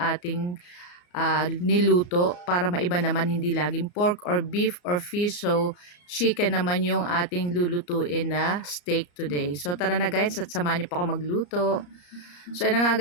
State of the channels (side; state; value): right; late; 34 ms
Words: niluto para maiba naman, hindi laging pork or beef or fish. So chicken naman yung ating lulutuin na steak today. So tara na guys at samahan niyo po ako magluto. So ayun na nga